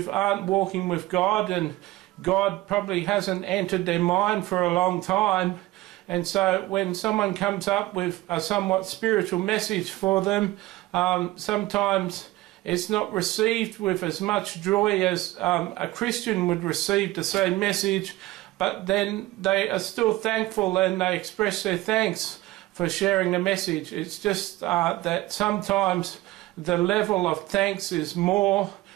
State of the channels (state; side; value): quieter; left; 18.1 dB